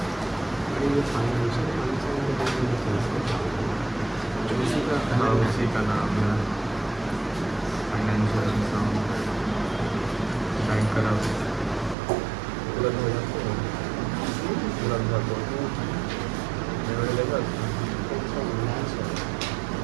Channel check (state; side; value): drops out; left; at 12.0 s